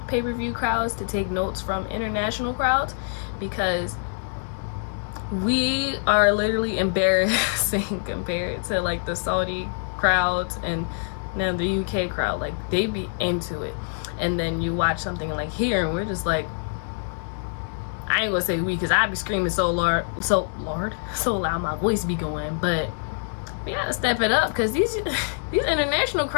pay-per-view crowds to take notes from international crowds, because we are literally embarrassing compared to like the Saudi crowds and now the UK crowd. Like they be into it, and then you watch something like here and we're just like, I ain't gonna say we, because I be screaming so loud my voice be going, but we gotta step it up, because these international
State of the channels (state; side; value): silent; right; digital silence